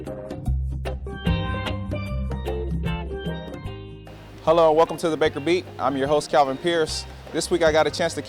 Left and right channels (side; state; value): both; identical; correlation 1.00